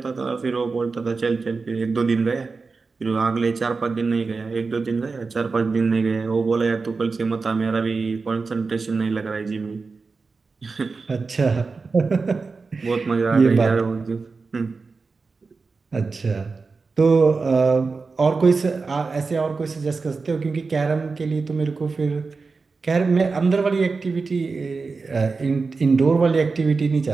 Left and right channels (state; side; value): quieter; left; 4.3 dB